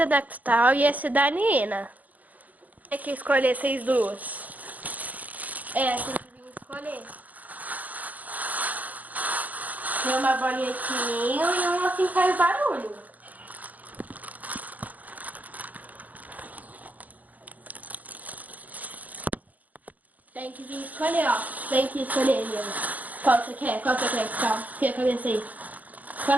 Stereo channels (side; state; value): left; late; 0.078 ms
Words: é da Cristal e esse é da Nina. Tem que escolher vocês duas. É, tem que vir escolher. Tem uma bolinha de sininho e uma assim faz barulho. Tem que vir escolher, ó. Tem que escolher, Nina. Qual você quer? Qual você quer, Cristal? Tira a cabeça aí.